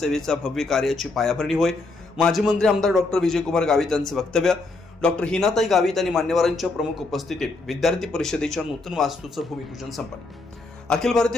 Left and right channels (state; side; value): quieter; right; 3.4 dB